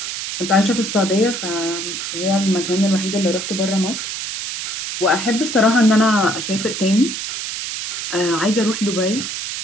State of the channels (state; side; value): noise; right; hiss, 5 dB below the sound